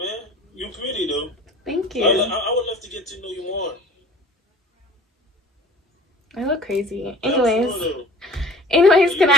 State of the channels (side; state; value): both; normal; correlation 0.46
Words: You pretty though. Thank you. I would love to get to know you more. I look crazy. Anyways, can I